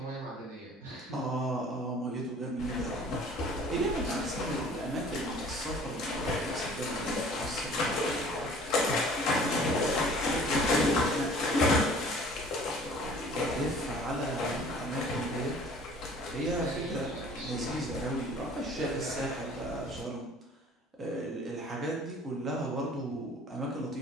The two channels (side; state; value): both; normal; correlation 0.50